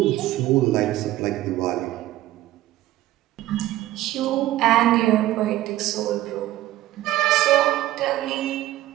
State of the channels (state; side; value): quieter; left; 15.1 dB